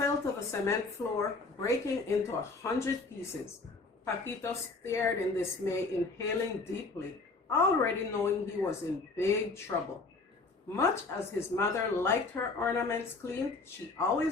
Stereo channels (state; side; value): quieter; right; 3.7 dB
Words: to the cement floor, breaking into 100 pieces. Paquito stared in dismay, inhaling deeply, already knowing he was in big trouble. Much as his mother liked her ornaments cleaned, she